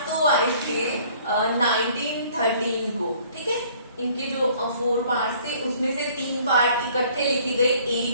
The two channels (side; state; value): both; inverted; correlation -0.57